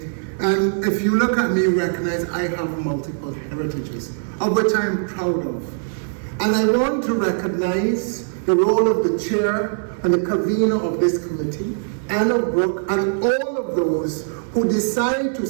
and if you look at me, you recognize I have multiple heritages, of which I am proud of. And I want to recognize the role of the chair and the convener of this committee, Anna Brooke, and all of those who decide to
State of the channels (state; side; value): silent; left; digital silence